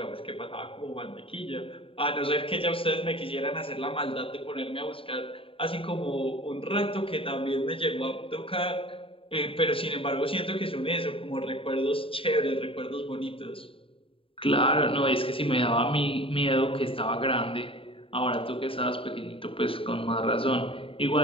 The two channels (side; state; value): right; late; 0.26 ms